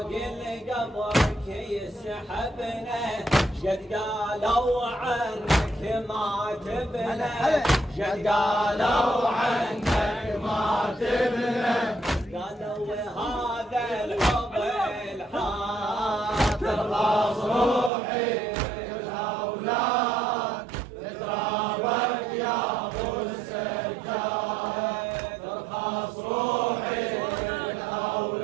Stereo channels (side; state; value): left; drops out; at 17.9 s